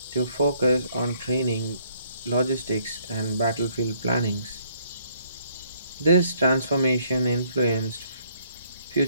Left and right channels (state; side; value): inverted; both; correlation -0.67